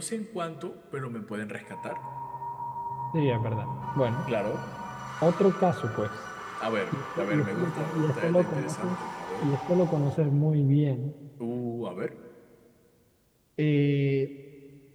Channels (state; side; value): identical; both; correlation 1.00